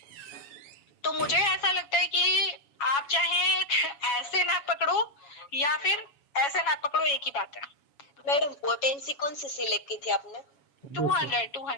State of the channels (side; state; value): right; late; 7.2 ms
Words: तो मुझे ऐसा लगता है कि आप चाहे ऐसे ना पकड़ो या फिर ऐसे ना पकड़ो, एक ही बात है। मैडम पोटेंसी कौन सी सिलेक्ट की थी आपने?